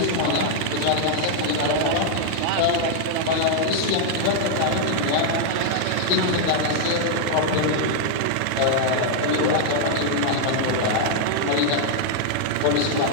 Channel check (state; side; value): different; both; correlation -0.01